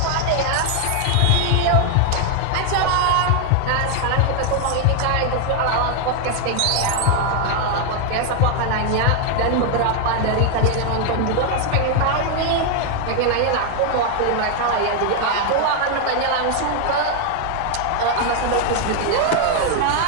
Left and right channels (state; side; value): different; both; correlation 0.00